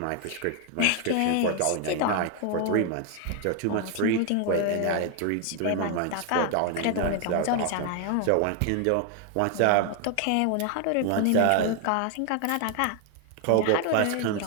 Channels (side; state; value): both; different; correlation 0.01